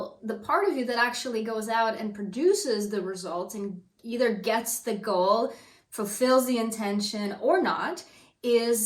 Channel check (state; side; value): identical; both; correlation 1.00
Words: the part of you that actually goes out and produces the results and either gets the goal, fulfills the intention or not,